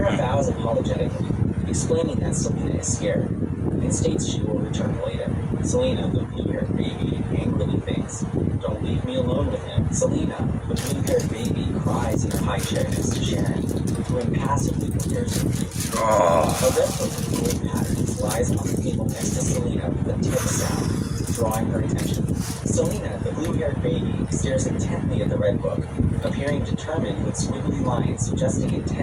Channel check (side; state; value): both; identical; correlation 1.00